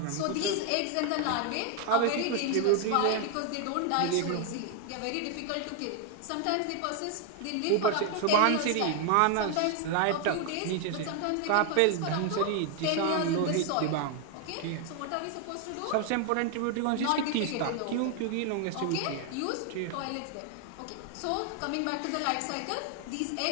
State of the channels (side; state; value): both; different; correlation 0.01